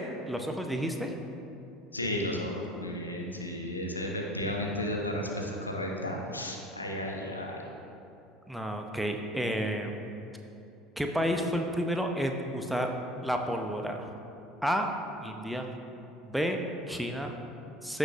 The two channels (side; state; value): both; normal; correlation 0.48